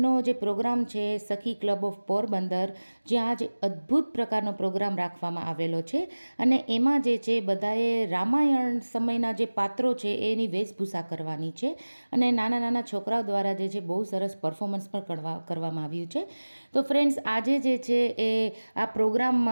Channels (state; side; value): inverted; both; correlation -1.00